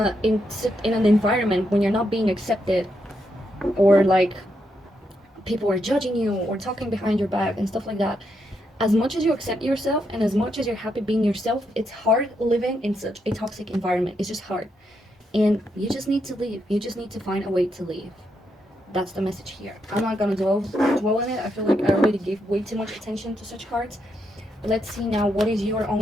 an environment, when you're not being accepted, or like people are judging you or talking behind your back and stuff like that. As much as you accept yourself and as much as you're happy being yourself, it's hard living in such a toxic environment. It's just hard. And you just need to leave. You just need to find a way to leave. That's the message here. I'm not gonna dwell on it. I feel like I already gave way too much attention to such cards. Let's see now, what is your own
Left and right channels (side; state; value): both; normal; correlation 0.80